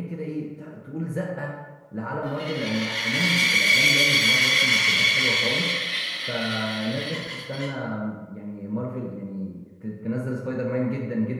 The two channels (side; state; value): both; identical; correlation 1.00